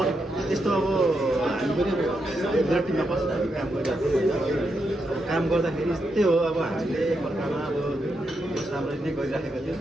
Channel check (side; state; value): both; normal; correlation 0.83